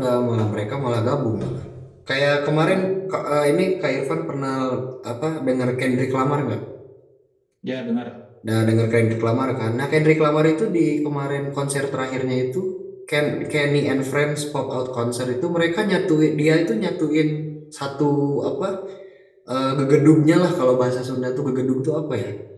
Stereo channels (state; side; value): identical; both; correlation 1.00